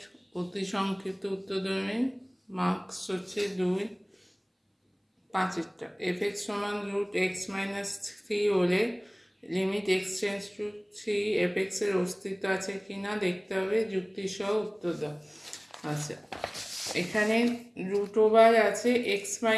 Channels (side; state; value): both; identical; correlation 1.00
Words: অতি সংক্ষিপ্ত উত্তরধর্মী মার্কস হচ্ছে 2 5টা। f(x) সমান √x-3 হলে limit x tends to 3 f(x) এর অস্তিত্ব আছে কিনা দেখতে হবে, যুক্তি সহ উত্তর দাও। আচ্ছা, এখানে √ওভার আছে